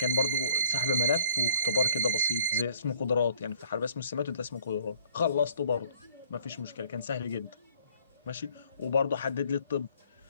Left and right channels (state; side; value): inverted; both; correlation -0.59